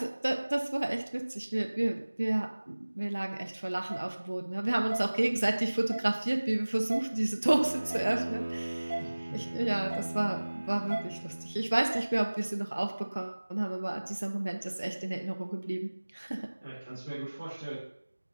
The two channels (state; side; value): inverted; both; correlation -1.00